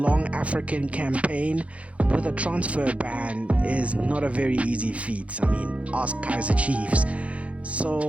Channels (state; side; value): late; left; 0.064 ms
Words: African campaign with a transfer ban is not a very easy feat. I mean, ask Kaizer Chiefs.